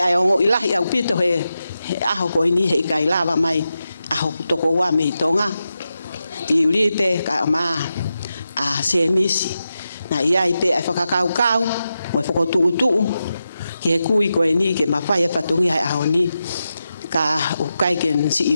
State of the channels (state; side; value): inverted; both; correlation -0.89